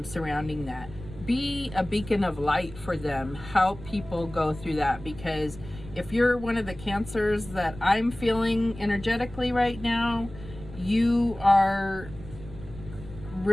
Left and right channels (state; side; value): noise; right; rumble, 15 dB below the sound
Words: surrounding that. Be a beacon of light for them. Help people go through that, because if you're one of the cancers that I'm feeling energetically right now, you are